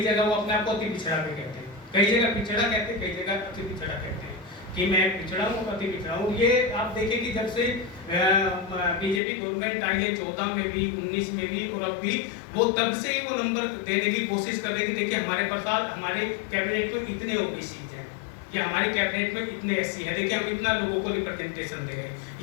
जगह वो अपने आप को अति पिछड़ा भी कहते हैं, कई जगह पिछड़ा कहते हैं, कई जगह अति पिछड़ा कहते हैं कि मैं पिछड़ा हूँ, अति पिछड़ा हूँ। ये आप देखें कि जब से बीजेपी गवर्नमेंट आई है 14 में भी, 19 में भी और अब भी, वो तब से ही वो नंबर देने की कोशिश कर रही थी। देखिए हमारे पास हमारे कैबिनेट में इतने ओबीसी हैं, कि हमारी कैबिनेट में इतने एससी हैं, देखिए हम इतना लोगों को रिप्रेजेंटेशन दे रहे हैं,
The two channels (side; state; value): right; drops out; at 9.2 s